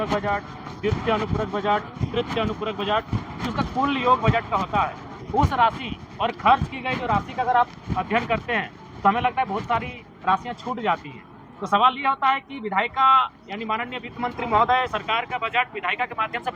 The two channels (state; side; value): identical; both; correlation 1.00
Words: बजट, द्वितीय अनुपूरक बजट, तृतीय अनुपूरक बजट, उसका कुल योग बजट का होता है। उस राशि और खर्च की गई जो राशि का अगर आप अध्ययन करते हैं तो हमें लगता है बहुत सारी राशियां छूट जाती हैं। तो सवाल यह होता है कि विधायिका यानी माननीय वित्त मंत्री महोदय, सरकार का बजट विधायिका के माध्यम से